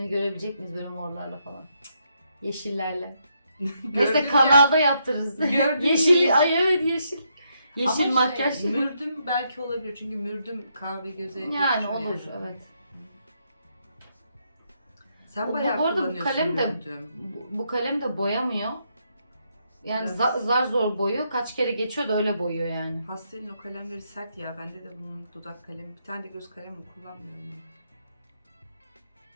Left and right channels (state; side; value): inverted; both; correlation -0.77